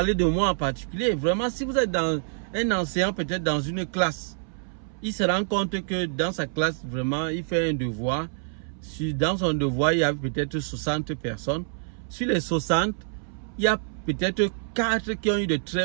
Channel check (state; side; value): silent; left; 61 dB below the other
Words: de moi en particulier. Vraiment, si vous êtes dans un enseignant, peut-être dans une classe, il se rend compte que dans sa classe, vraiment, il fait un devoir. Dans son devoir, il y a peut-être 60 personnes. Sur les 60, il y a peut-être 4 qui ont eu de